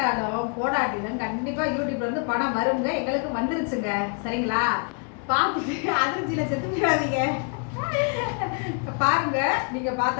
போடாட்டிலும் கண்டிப்பாக யூடியூப்லேருந்து பணம் வருங்க. எங்களுக்கு வந்துருச்சுங்க. சரிங்களா? பார்த்துட்டு அதிர்ச்சியில் செத்து போயிடாதீங்க. பாருங்க, நீங்கள்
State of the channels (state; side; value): quieter; right; 39.3 dB